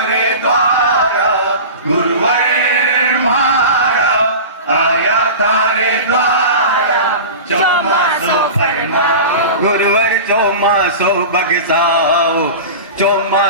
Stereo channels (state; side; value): inverted; both; correlation -0.31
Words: द्वारा, गुरुवर मारा आया थारे द्वारा, चौमासो फरमाओ गुरुवर चौमासो बगसाओ,